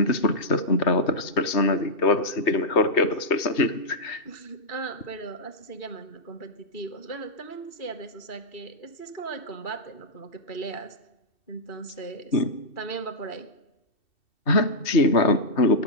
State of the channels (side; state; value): right; late; 2.7 ms